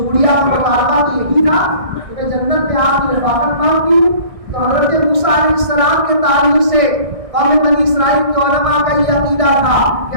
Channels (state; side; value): late; left; 1.6 ms